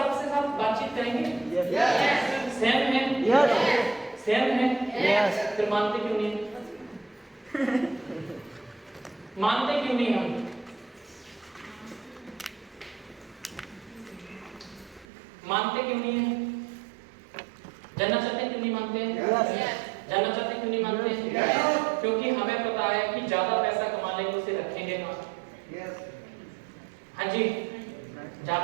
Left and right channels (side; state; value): left; drops out; at 15.1 s